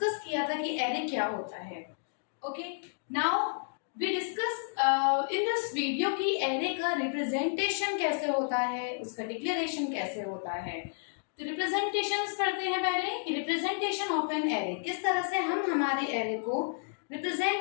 किया था कि एरे क्या होता है। Okay, now we discuss in this video कि एरे का रिप्रेजेंटेशन कैसे होता है, उसका डिक्लेरेशन कैसे होता है। तो रिप्रेजेंटेशंस पढ़ते हैं पहले कि रिप्रेजेंटेशन ऑफ एन एरे, किस तरह से हम हमारे एरे को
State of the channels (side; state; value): right; silent; digital silence